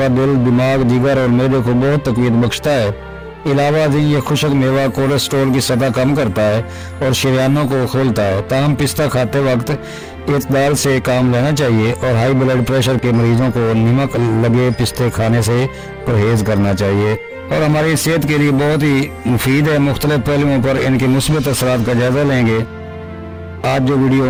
दिल, दिमाग, जिगर और मैदे को बहुत तक़वीयत बख्शता है। अलावा ये खुशक मेवा कोलेस्ट्रॉल की सतह कम करता है और शरीयानों को खोलता है। ताहम पिस्ता खाते वक्त इतदाल से काम लेना चाहिए और हाई ब्लड प्रेशर के मरीजों को नमक लगे पिस्ते खाने से परहेज करना चाहिए और हमारी सेहत के लिए बहुत ही मुफीद है। मुख्तलिफ पहलुओं पर इनके मुस्बत असरात का जायजा लेंगे। आज जो वीडियो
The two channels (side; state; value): both; identical; correlation 1.00